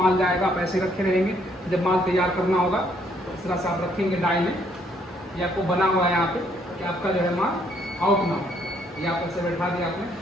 जाएगा, आप ऐसे रखे रहेंगे। जब माल तैयार करना होगा तो इस तरह से आप रखेंगे डाई में। ये आपको बना हुआ है यहाँ पे कि आपका जो है माल आउट ना हो। ये आप ऐसे बैठा दिया आपने,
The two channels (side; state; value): both; normal; correlation 0.68